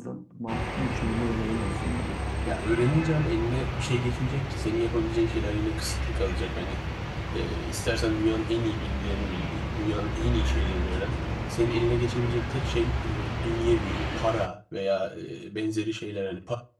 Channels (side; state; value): both; identical; correlation 1.00